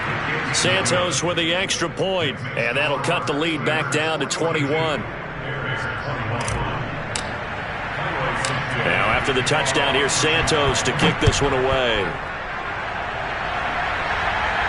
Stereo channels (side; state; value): both; identical; correlation 1.00